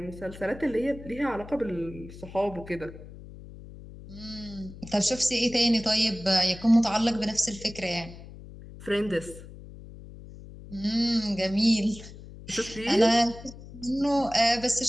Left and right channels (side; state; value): left; noise; hum, 16 dB below the sound